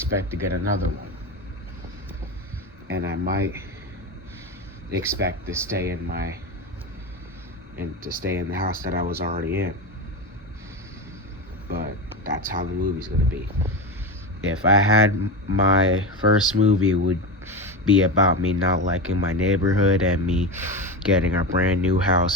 to get another one. And I might expect to stay in the house that I was already in. But that's how the movie's gonna be. If I had my first movie, it would be about me not liking my neighborhood and me getting a brand new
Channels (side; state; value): both; normal; correlation 0.20